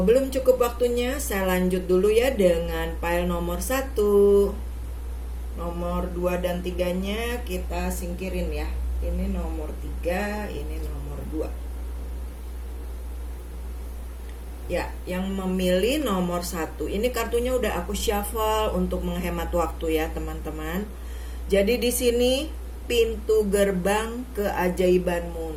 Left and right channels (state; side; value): identical; both; correlation 1.00